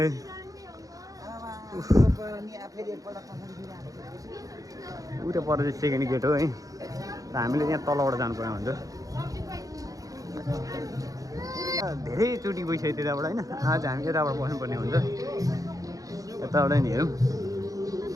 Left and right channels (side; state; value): left; late; 0.17 ms